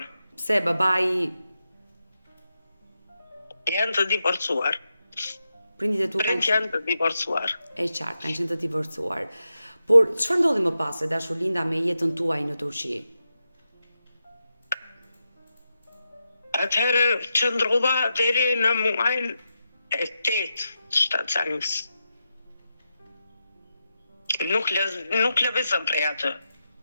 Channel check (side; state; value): both; inverted; correlation -0.88